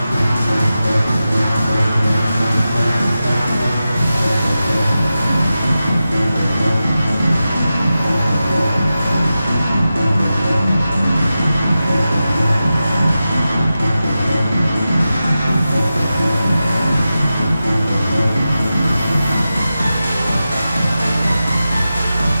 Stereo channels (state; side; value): inverted; both; correlation -0.93